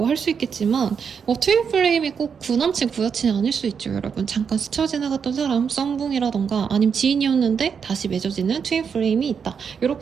할 수 있겠지만 트윈플레임이 꼭 구남친 구여친이 아닐 수 있죠. 여러분 잠깐 스쳐 지나갔던 사람 썸붕이라던가 아니면 지인이었는데 다시 맺어지는 트윈플레임이 있다.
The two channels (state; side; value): quieter; left; 6.6 dB